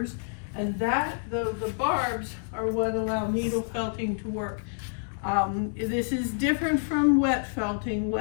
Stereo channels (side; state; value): right; silent; digital silence